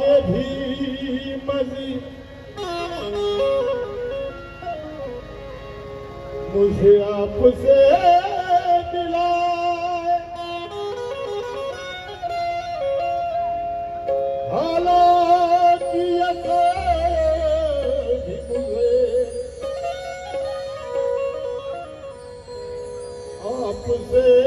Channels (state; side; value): identical; both; correlation 1.00